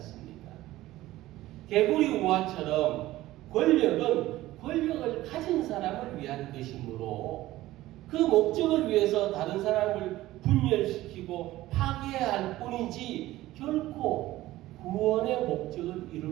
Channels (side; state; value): left; quieter; 16.3 dB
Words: 개구리 우화처럼 권력은 권력을 가진 사람을 위한 것이므로 그 목적을 위해서 다른 사람을 분열시키고 파괴할 뿐이지 결코 구원의 목적을